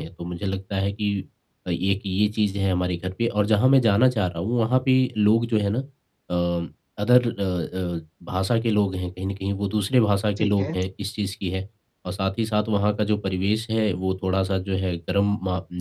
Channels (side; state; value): both; identical; correlation 1.00